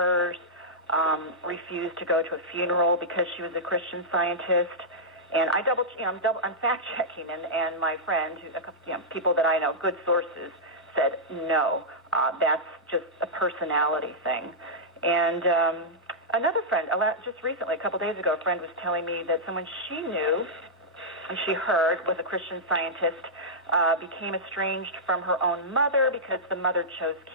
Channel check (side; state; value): both; normal; correlation -0.10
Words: refused to go to a funeral because she was a Christian Scientist. And I'm fact checking, and my friend, people that I know, good sources, said no, that's just a personality thing. And another friend, just recently, a couple days ago, a friend was telling me that someone she knew and she heard was a Christian Scientist became estranged from her own mother because the mother chose